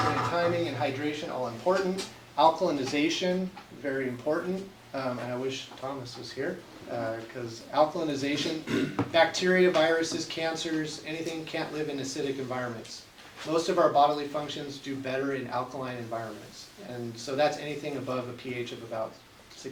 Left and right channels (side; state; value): both; identical; correlation 1.00